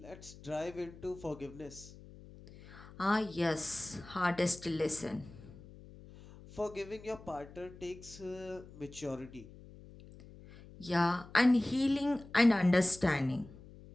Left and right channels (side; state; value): left; noise; hum, 19 dB below the sound